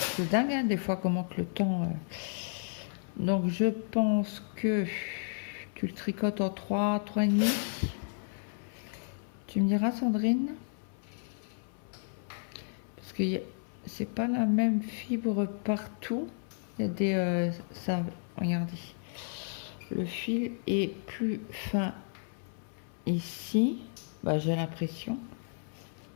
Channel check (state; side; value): silent; right; 56 dB below the other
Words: dingue, hein, des fois, comment que le temps... Donc, je pense que tu le tricotes en 3,5. Tu me diras, Sandrine? Parce que c'est pas la même fibre partout. Il y a des... ça, regardez. Le fil est plus fin ici. Bah, j'ai l'impression